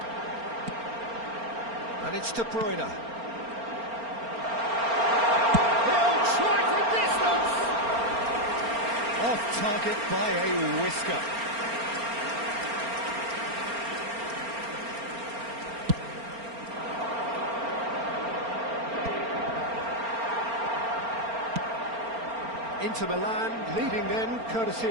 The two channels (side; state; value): left; late; 4.3 ms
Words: And it's De Bruyne. He'll try from distance! Off target by a whisker. Inter Milan leading then, courtesy